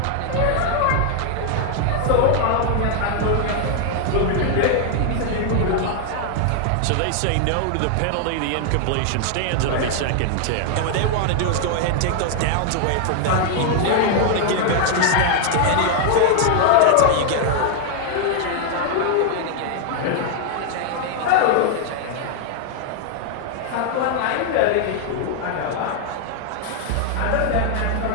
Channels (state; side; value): different; both; correlation 0.00